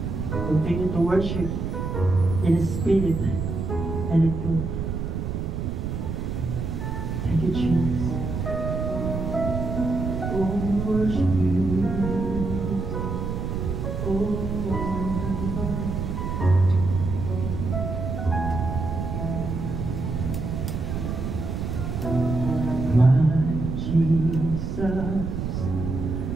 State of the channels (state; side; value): noise; right; rumble, 3 dB below the sound